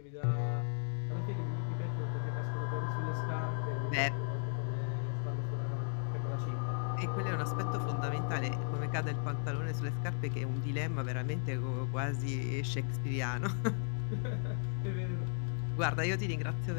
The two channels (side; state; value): right; silent; 54 dB below the other